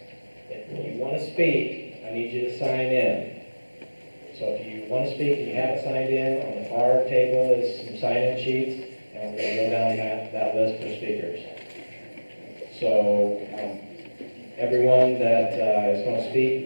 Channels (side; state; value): both; inverted; correlation -1.00